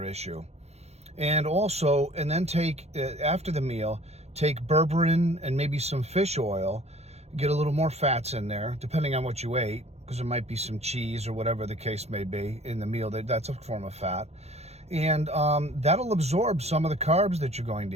issue. And also, and then take, after the meal, take berberine and maybe some fish oil, get a little more fats in there, depending on what you ate, because there might be some cheese or whatever the case may be in the meal. That's a form of fat. And that'll absorb some of the carbs that you're going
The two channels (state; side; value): late; left; 0.31 ms